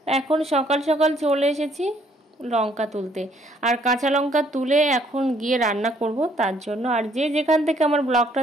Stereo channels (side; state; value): both; normal; correlation 0.65